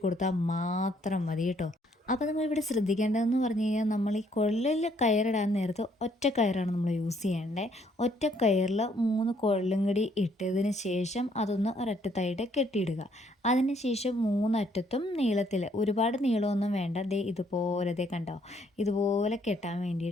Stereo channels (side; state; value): both; normal; correlation 0.67